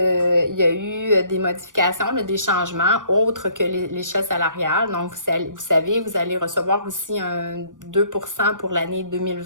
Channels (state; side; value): late; left; 0.88 ms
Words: y a eu des modifications, des changements autres que l'échelle salariale. Donc, vous savez, vous allez recevoir aussi un 2% pour l'année